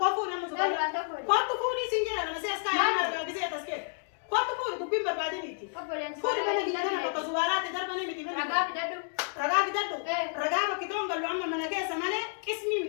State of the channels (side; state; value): right; silent; digital silence